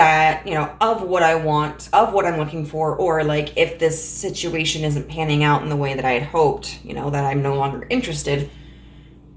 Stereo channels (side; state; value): both; identical; correlation 1.00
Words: of what I want, of what I'm looking for, or like if this situation isn't panning out in the way that I had hoped, that I'm no longer interested.